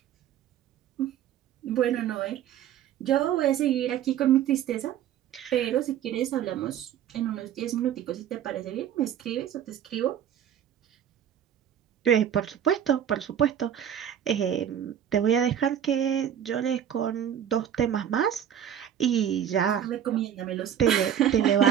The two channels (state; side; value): quieter; left; 9.7 dB